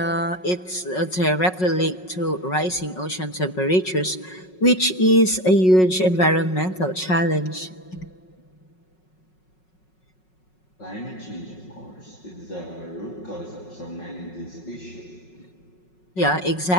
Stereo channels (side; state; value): right; late; 5.4 ms